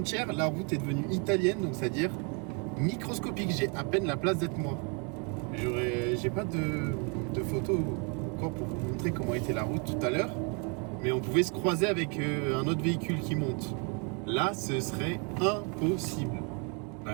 la route est devenue italienne, donc c'est-à-dire microscopique. J'ai à peine la place d'être moi. J'ai pas de photos encore pour vous montrer comment était la route tout à l'heure, mais on pouvait se croiser avec un autre véhicule qui monte. Là, ce serait impossible.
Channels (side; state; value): left; quieter; 35.4 dB